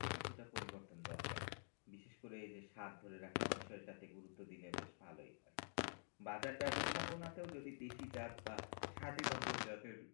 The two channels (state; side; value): silent; right; digital silence